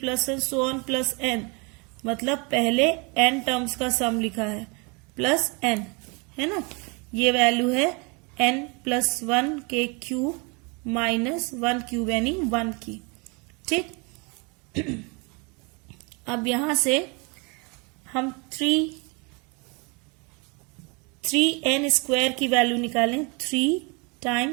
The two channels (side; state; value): left; quieter; 30.8 dB